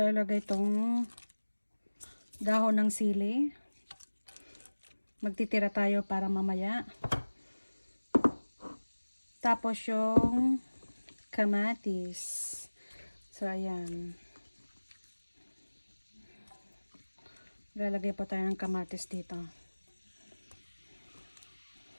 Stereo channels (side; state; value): both; inverted; correlation -1.00